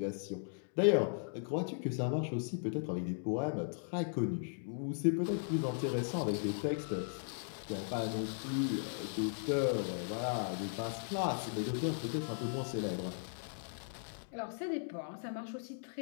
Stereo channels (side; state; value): right; silent; digital silence